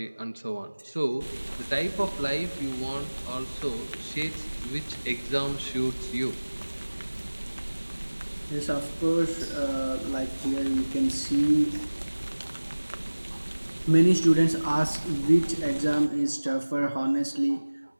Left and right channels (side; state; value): both; inverted; correlation -1.00